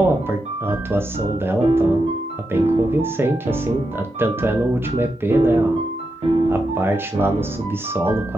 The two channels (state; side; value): normal; both; correlation 0.86